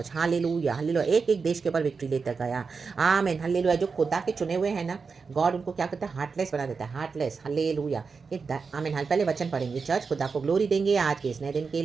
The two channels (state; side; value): quieter; left; 5.0 dB